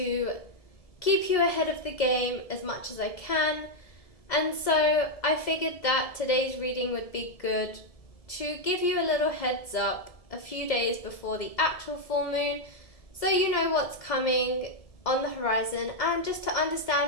keep you ahead of the game as much as I can. And so I figured that today's reading would be good to give you a little heads up a few days before the actual full moon, so you know what's coming on the horizon and just to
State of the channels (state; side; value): late; right; 2.0 ms